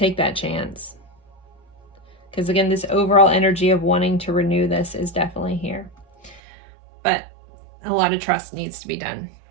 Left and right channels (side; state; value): left; drops out; at 6.4 s